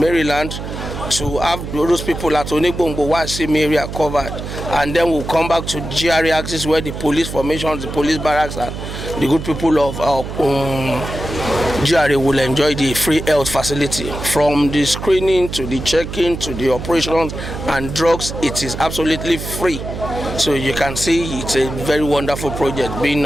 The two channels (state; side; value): noise; right; hum, 8 dB below the sound